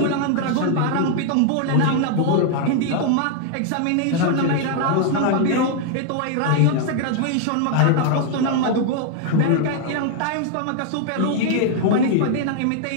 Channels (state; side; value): different; both; correlation 0.00